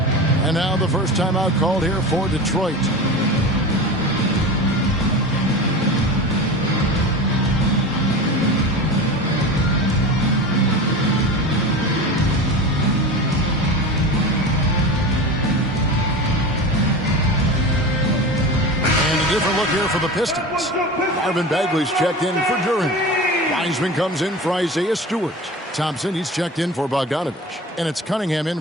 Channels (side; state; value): both; normal; correlation 0.30